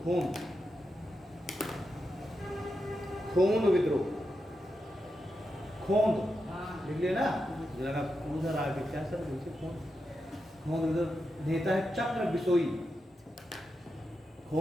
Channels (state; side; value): normal; both; correlation 0.87